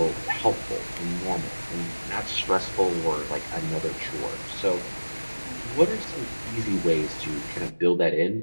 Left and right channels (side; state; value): both; inverted; correlation -1.00